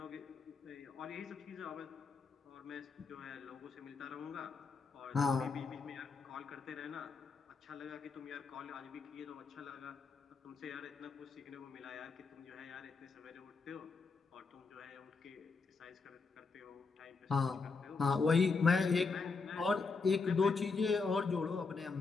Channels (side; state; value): right; quieter; 4.5 dB